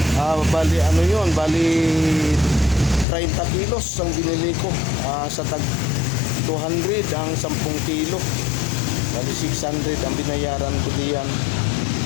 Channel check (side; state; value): right; drops out; at 3.1 s